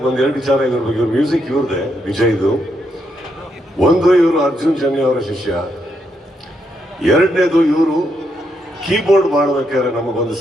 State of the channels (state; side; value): normal; both; correlation 0.79